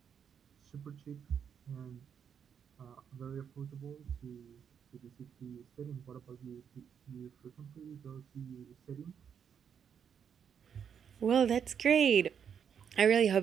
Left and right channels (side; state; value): left; quieter; 7.7 dB